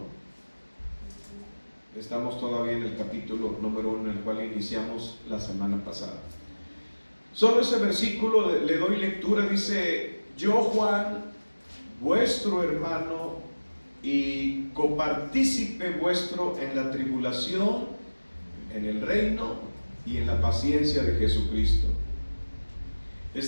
Estamos todavía en el capítulo número 1, en el cual iniciamos la semana pasada. Solo ese versículo le doy lectura. Dice: yo, Juan, vuestro hermano y copartícipe vuestro en la tribulación, en el reino y en la paciencia de Jesucristo.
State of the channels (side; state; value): both; inverted; correlation -1.00